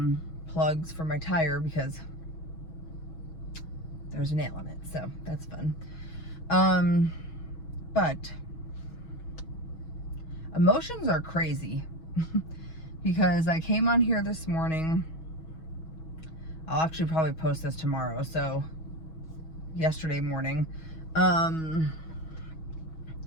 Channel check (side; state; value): right; late; 6.2 ms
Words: plugs for my tire because there's a nail in it, so that's fun. But emotions are crazy because I came on here this morning. I'll actually probably post this tomorrow, so yesterday morning, on